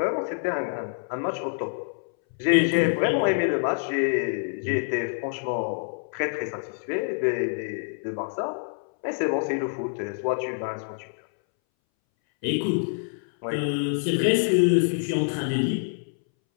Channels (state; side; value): silent; right; 61 dB below the other